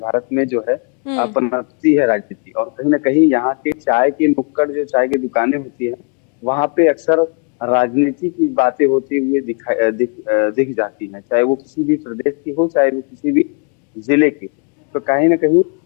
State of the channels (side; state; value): right; quieter; 37.4 dB